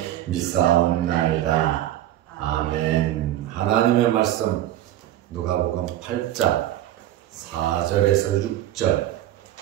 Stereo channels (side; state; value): left; quieter; 13.2 dB